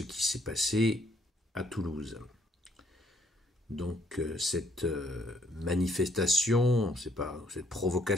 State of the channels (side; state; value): both; normal; correlation 0.68